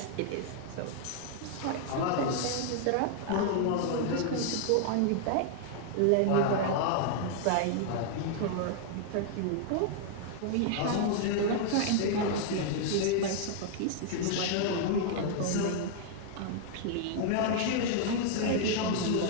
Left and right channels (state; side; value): different; both; correlation -0.01